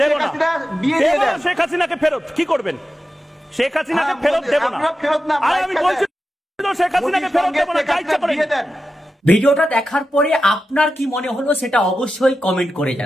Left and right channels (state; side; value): normal; both; correlation 0.91